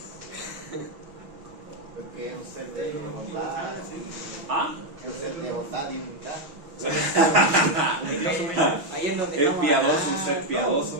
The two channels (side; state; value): left; late; 6.2 ms